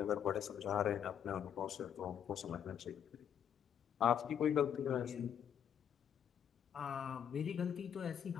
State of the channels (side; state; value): right; quieter; 9.0 dB